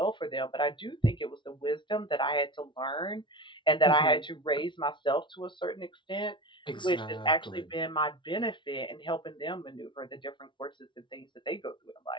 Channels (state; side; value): late; right; 0.24 ms